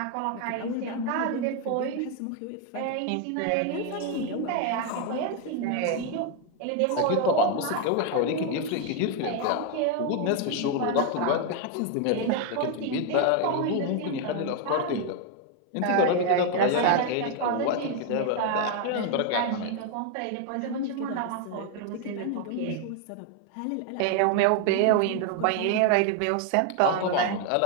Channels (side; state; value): both; different; correlation 0.01